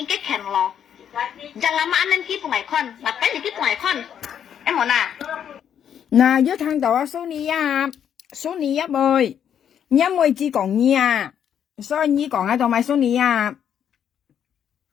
ke ken loh. Jangan lama anh kia ngày con, mà cái gì kia ngày con, em muốn à? Nè, với thằng đó số ni á bơi, nhớ môi chỉ còn nhia, sao nhí còn ai đâu mà số ni à?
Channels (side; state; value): right; quieter; 8.9 dB